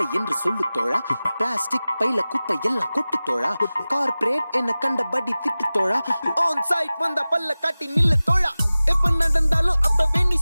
என்று சொல்லு தோழா, plastic பைல குப்பை எல்லாம் கொட்டு தோழா, corporate என்ன கண்டபடி திட்டு தோழா, ஆன் சைட் வந்த பல்ல காட்டி நில்லு தோழா, எப்ப நடந்தாலும் அப்பவே நீ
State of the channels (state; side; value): inverted; both; correlation -0.97